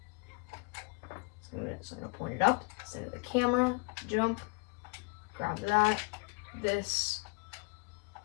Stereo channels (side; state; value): right; quieter; 30.5 dB